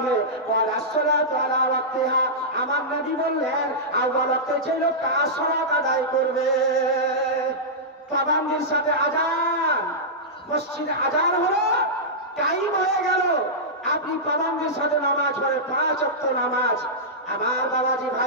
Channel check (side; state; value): both; normal; correlation -0.13